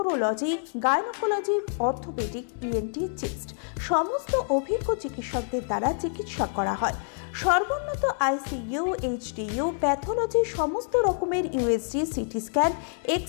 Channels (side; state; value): right; silent; digital silence